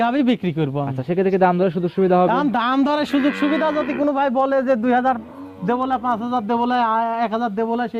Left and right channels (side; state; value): both; identical; correlation 1.00